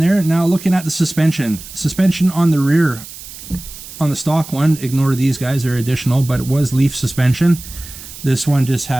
Now looking at the suspension on the rear, on the stock one, ignore these guys, they're additional, but it was leaf suspension. This one just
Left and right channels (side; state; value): right; noise; hiss, 15 dB below the sound